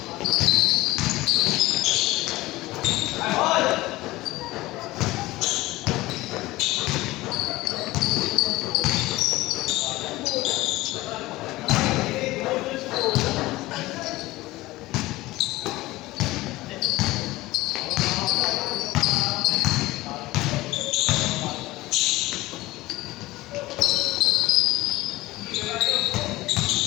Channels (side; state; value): right; quieter; 18.7 dB